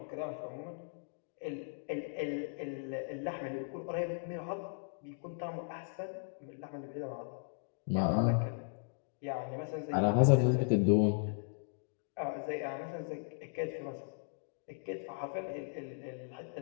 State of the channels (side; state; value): right; silent; digital silence